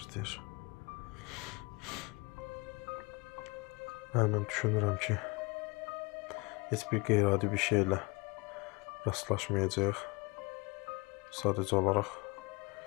Mən düşünürəm ki, heç bir qeyri-adi bir şeylə rastlaşmayacaq. Sadəcə olaraq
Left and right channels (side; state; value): right; quieter; 27.0 dB